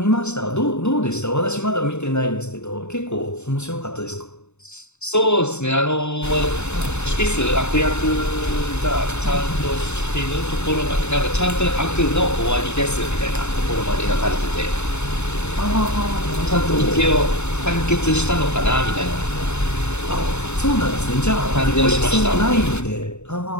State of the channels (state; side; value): late; right; 0.82 ms